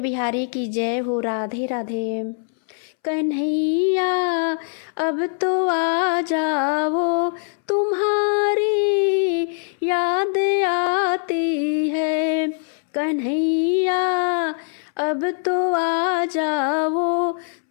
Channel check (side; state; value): right; silent; 64 dB below the other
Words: बिहारी की जय हो। राधे राधे। कन्हैया अब तो आ जाओ, तुम्हारी याद आती है। कन्हैया अब तो आ जाओ,